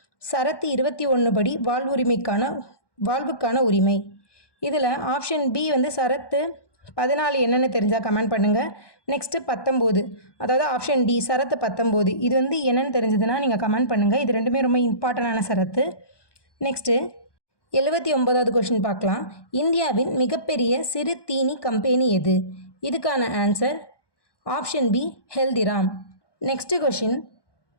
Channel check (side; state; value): right; late; 1.2 ms